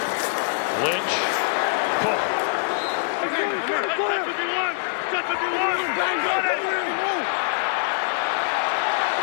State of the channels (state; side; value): silent; right; digital silence